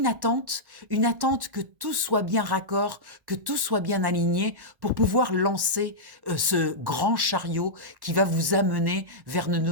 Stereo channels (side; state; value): left; late; 1.1 ms